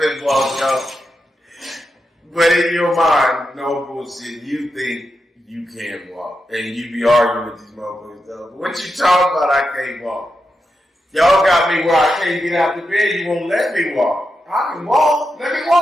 walk, y'all. But in your mind, no bullshit, you think you can walk. And you be arguing with these motherfuckers, though. But what you talking about, I can't walk? Y'all got me where I can't get out the bed, you won't let me walk. I can walk, let me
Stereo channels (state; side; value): normal; both; correlation 0.87